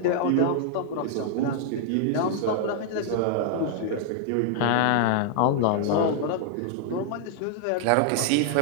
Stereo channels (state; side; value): different; both; correlation -0.01